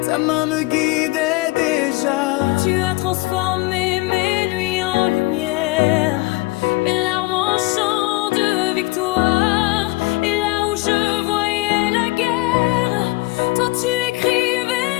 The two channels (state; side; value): quieter; right; 22.8 dB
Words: ta main me guidait déjà. Tu as transformé mes nuits en lumière.